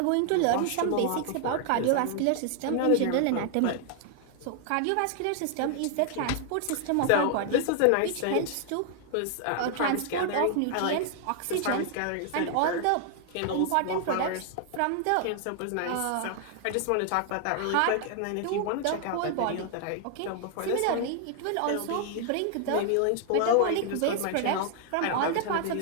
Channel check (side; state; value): both; different; correlation 0.00